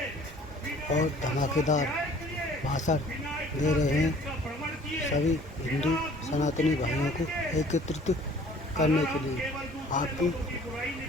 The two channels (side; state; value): both; normal; correlation 0.52